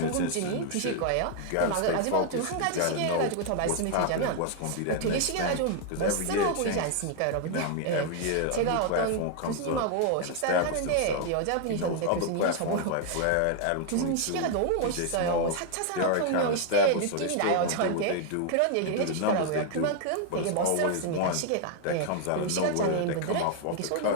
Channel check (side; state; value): both; different; correlation 0.00